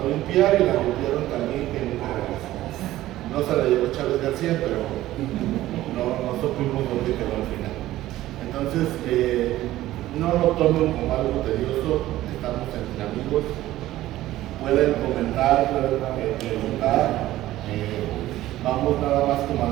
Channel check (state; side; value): quieter; left; 15.2 dB